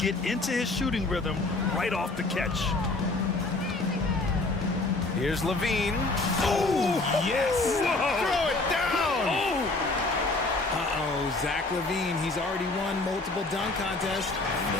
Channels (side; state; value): right; quieter; 3.2 dB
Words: into his shooting rhythm right off the catch. Here's LaVine. Oh, yes! Throw it down! Uh-oh, Zach LaVine, he's already won multiple dunk contests.